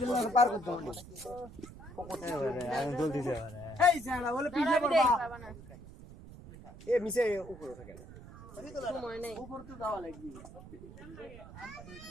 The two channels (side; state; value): right; noise; rumble, 16 dB below the sound